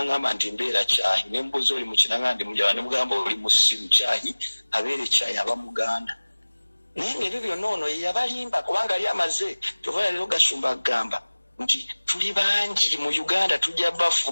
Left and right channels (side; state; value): both; inverted; correlation -1.00